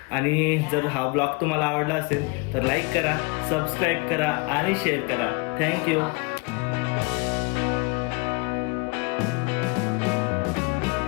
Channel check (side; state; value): right; quieter; 29.4 dB